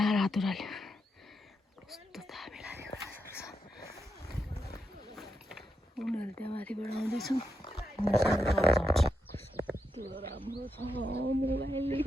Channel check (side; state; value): both; normal; correlation 0.84